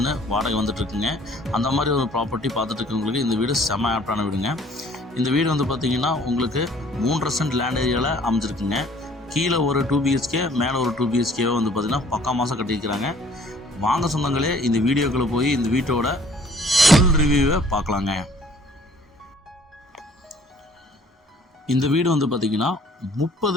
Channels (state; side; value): normal; both; correlation 0.56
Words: வாடகை வந்துட்டுருக்குங்க. அந்த மாதிரி ஒரு ப்ராப்பர்ட்டி பார்த்துட்டு இருக்கவங்களுக்கு இந்த வீடு செம்ம ஆப்டான வீடுங்க. இந்த வீடு வந்து பார்த்திங்கன்னா உங்களுக்கு 3.5 சென்ட் லேண்ட் ஏரியாவில் அமைஞ்சிருக்குங்க. கீழே ஒரு 2 BHK மேலே ஒரு 2 BHK வந்து பார்த்திங்கன்னா பக்கா மாதம் கட்டியிருக்கிறாங்க. வாங்க சொந்தங்களே, இந்த வீடியோக்குள்ளே போய் இந்த வீட்டோட ஃபுல் ரிவ்யூவை பார்க்கலாங்க. இந்த வீடு வந்து பார்த்திங்கன்னா